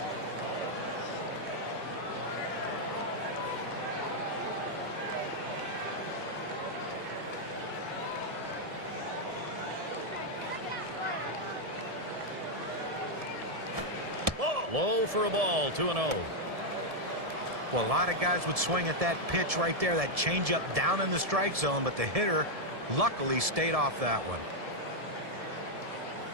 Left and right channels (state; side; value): late; left; 1.7 ms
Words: Low for a ball, 2-0. Well, a lot of guys would swing at that pitch right there, that changeup down in the strike zone, but the hitter luckily stayed off that one.